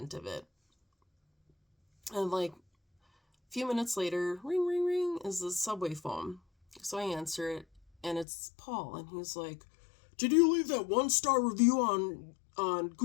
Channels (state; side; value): drops out; right; at 8.2 s